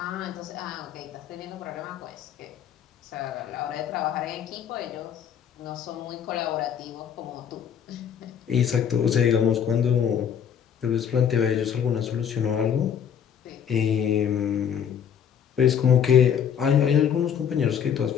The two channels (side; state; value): right; quieter; 8.4 dB